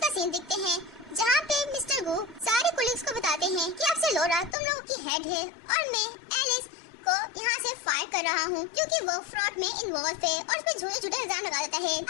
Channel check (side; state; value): right; drops out; at 4.5 s